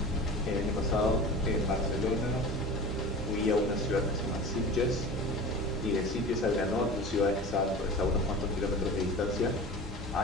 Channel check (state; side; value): normal; both; correlation 0.35